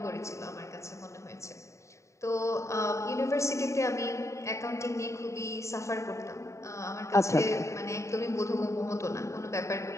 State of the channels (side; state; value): right; late; 0.14 ms